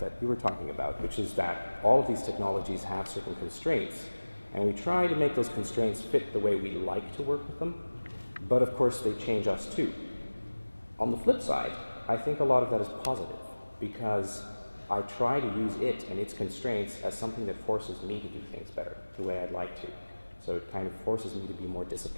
you were talking about, which is that all of these technologies have certain constraints, and we try to make those constraints fit the way we like to work with them, but of course they change us too. On the flip side, I think a lot of that is positive, because I try to use it and its constraints as something that forces me to do things better, the way I'd like to. So it kind of forces me to be more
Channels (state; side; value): inverted; both; correlation -1.00